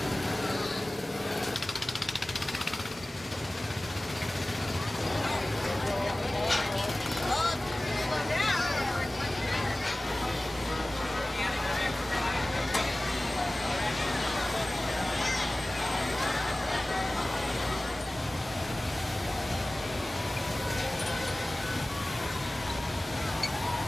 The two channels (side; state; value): both; normal; correlation 0.98